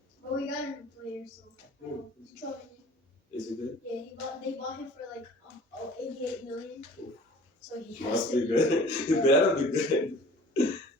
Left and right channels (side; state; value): both; normal; correlation 0.47